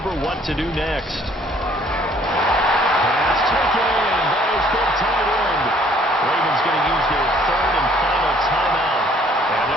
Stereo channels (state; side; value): normal; both; correlation 0.60